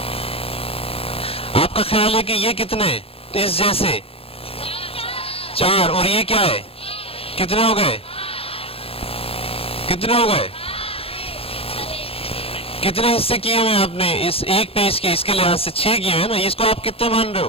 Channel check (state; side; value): late; right; 0.28 ms